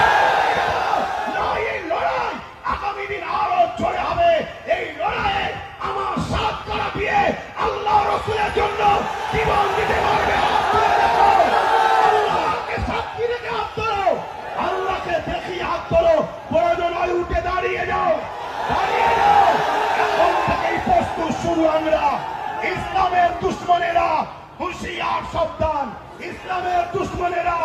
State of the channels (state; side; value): identical; both; correlation 1.00